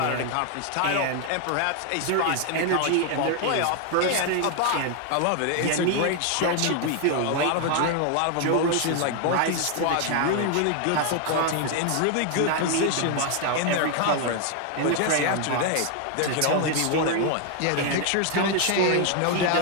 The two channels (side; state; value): both; different; correlation 0.01